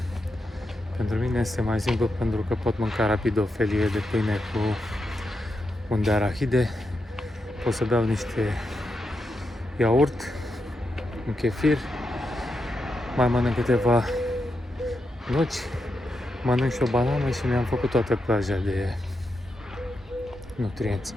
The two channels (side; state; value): both; normal; correlation 0.86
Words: Pentru mine este mai simplu pentru că pot mânca rapid o felie de pâine cu un de arahide, pot să beau niște iaurt, un chefir, mai mănânc câteva nuci, mănânc și o banană și mi-am făcut toată plaja de nutrienți.